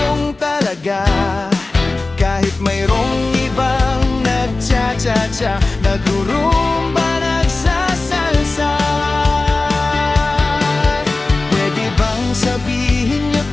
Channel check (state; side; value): quieter; right; 3.3 dB